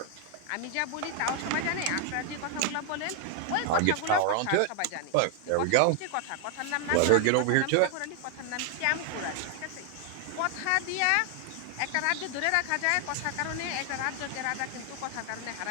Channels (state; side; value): different; both; correlation 0.00